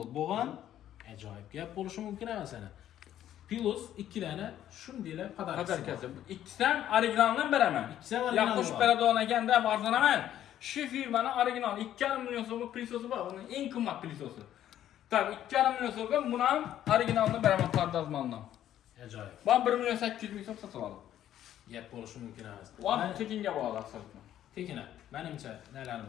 bo'lgan ajoyib gap bo'lishi mumkin emas ana. Pilos 2 dana shundaylar Podarkasi. İkisidan originaldan beraman. İkisi ham original. Ya qo'shib beradigan ekanda arzanaman. Şu firmanın original 2,5 milyon so'mlik pilososi bor. Uning eng qimmat pilososi. Tabii 2,5 milyon so'mga buni ham originaldan beraman pardozmandan. Ajoyib. Ben 1 milyon 800 ming so'm sotib oldim. Gap bo'lishi mumkin emas. Ular tekinga bog'liq asosan. Tekina, menimcha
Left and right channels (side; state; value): right; quieter; 11.6 dB